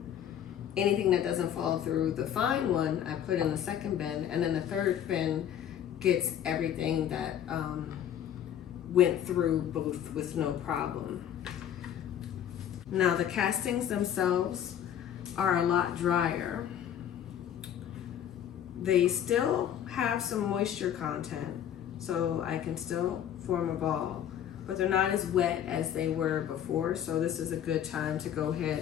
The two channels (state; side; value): quieter; right; 10.0 dB